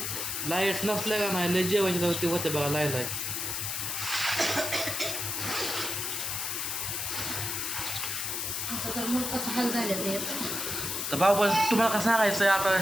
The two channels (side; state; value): left; noise; hiss, 2 dB below the sound